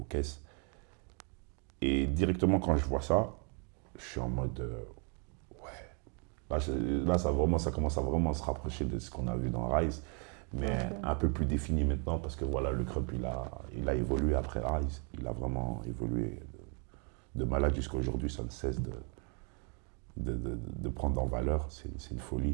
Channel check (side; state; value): left; quieter; 37.6 dB